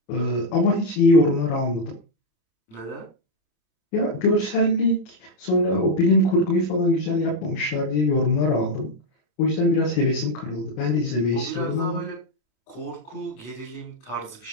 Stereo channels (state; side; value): late; right; 26 ms